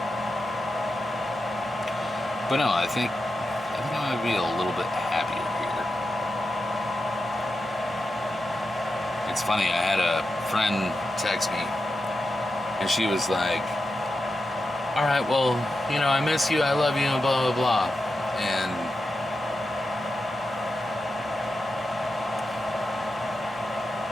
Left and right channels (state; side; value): normal; both; correlation 0.89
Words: But no, I think I'm gonna be a little bit happier here. It's funny, I had a friend text me, and she was like, "All right, well, I miss you, I love you, and blah, blah, blah." And